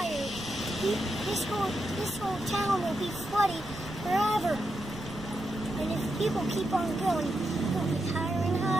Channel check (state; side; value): noise; right; rumble, 15 dB below the sound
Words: this whole town will be flooded forever. And if people keep on going, it'll be higher and